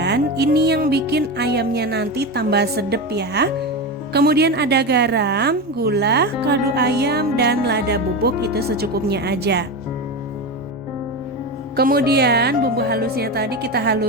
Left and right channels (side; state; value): both; normal; correlation 0.19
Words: Ini yang bikin ayamnya nanti tambah sedep ya. Kemudian ada garam, gula, kaldu ayam, dan lada bubuk, itu secukupnya aja. Kemudian bumbu halusnya tadi kita